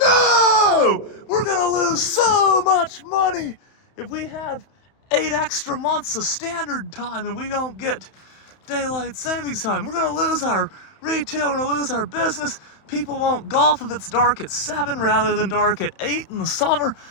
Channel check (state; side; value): late; right; 31 ms